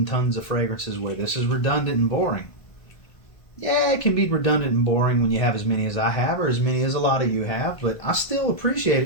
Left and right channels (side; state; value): right; late; 1.5 ms